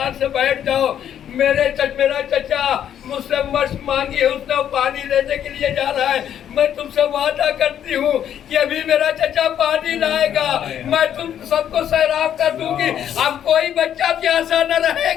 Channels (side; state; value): right; quieter; 9.9 dB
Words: से बैठ जाओ, मेरा चचा मुझसे मशक मांगी है, उसने पानी लेने के लिए जा रहा है, मैं तुमसे वादा करती हूँ कि अभी मेरा चचा पानी लाएगा, मैं तुम सबको सैराब कर दूंगी, अब कोई बच्चा प्यासा न